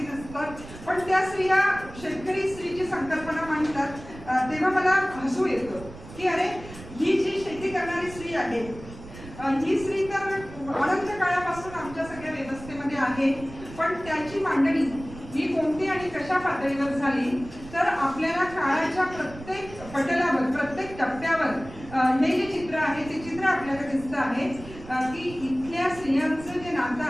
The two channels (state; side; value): noise; right; rumble, 16 dB below the sound